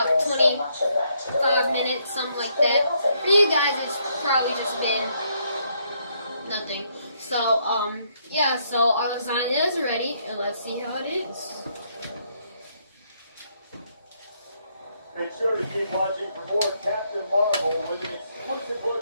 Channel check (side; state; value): both; inverted; correlation -0.73